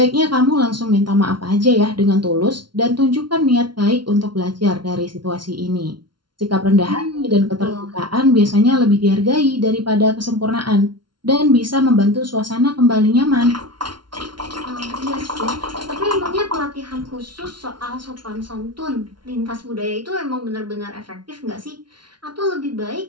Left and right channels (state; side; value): late; left; 0.72 ms